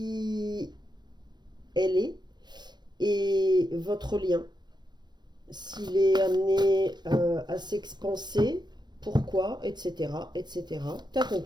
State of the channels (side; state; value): left; late; 0.21 ms